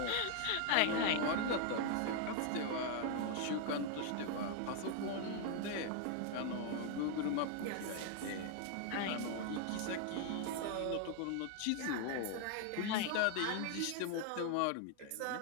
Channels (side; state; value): both; different; correlation 0.00